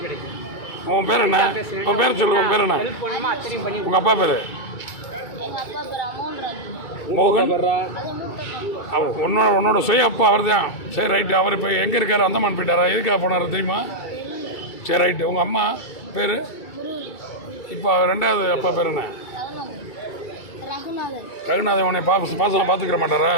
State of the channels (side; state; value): right; late; 2.3 ms